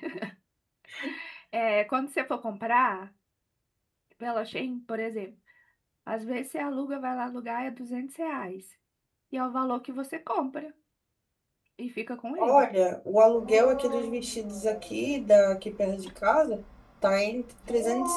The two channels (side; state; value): both; identical; correlation 1.00